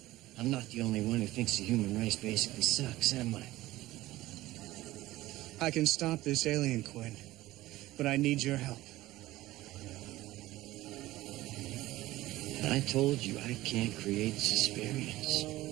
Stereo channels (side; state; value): left; quieter; 17.0 dB